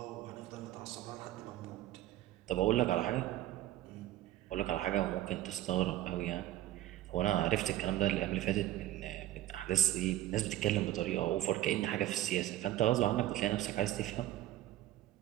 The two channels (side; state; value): left; quieter; 14.1 dB